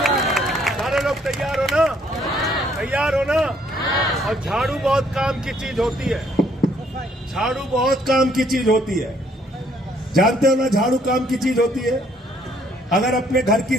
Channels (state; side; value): normal; both; correlation 0.66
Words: सारे लोग तैयार हो ना? तैयार हो ना? और झाड़ू बहुत काम की चीज होती है, झाड़ू बहुत काम की चीज होती है। जानते हो ना झाड़ू काम की चीज होती है? अगर अपने घर की